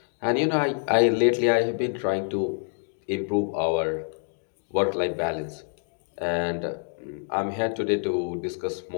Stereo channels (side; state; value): right; silent; 56 dB below the other